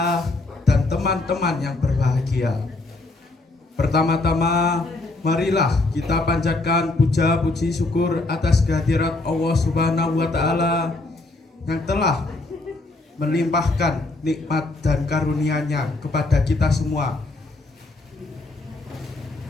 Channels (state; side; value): quieter; right; 3.1 dB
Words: dan teman-teman yang berbahagia, pertama-tama marilah kita panjatkan puja puji syukur atas kehadirat Allah Subhanahu wa taala yang telah melimpahkan nikmat dan karunia-Nya kepada kita semua